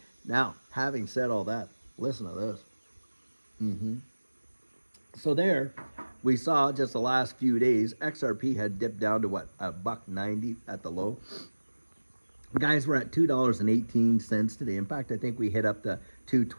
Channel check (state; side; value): inverted; both; correlation -1.00